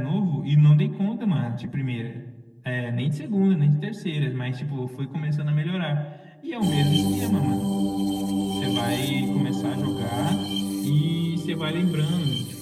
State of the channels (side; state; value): both; identical; correlation 1.00